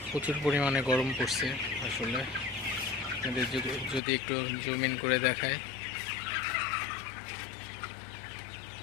প্রচুর পরিমাণে গরম পড়ছে। আসলে যদি একটু জুম ইন করে দেখায়,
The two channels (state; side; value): drops out; right; at 4.0 s